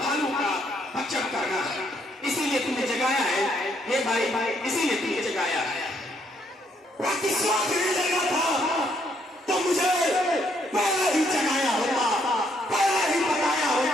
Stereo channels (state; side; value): normal; both; correlation 0.72